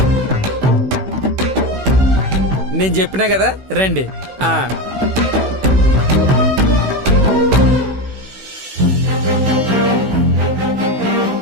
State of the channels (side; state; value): left; late; 16 ms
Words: నేను చెప్పినా కదా, రండి.